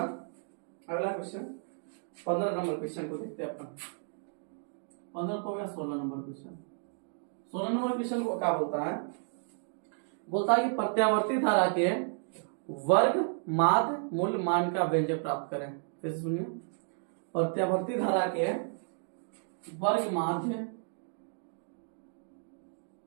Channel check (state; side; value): silent; left; 56 dB below the other